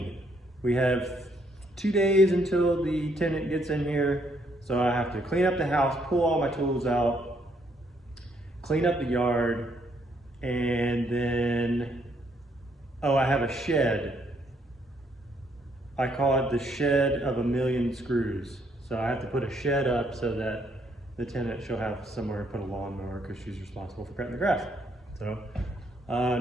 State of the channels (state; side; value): normal; both; correlation 0.71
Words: We have 2 days until the tenant gets in here. So I have to clean up the house, pull all my tools out, clean up the yard, and then, oh, I have a shed. I call it the shed of a million screws. So I have to put a shed up so that the tenant, she'll have somewhere to put a lawnmower because she's responsible for cutting the grass. So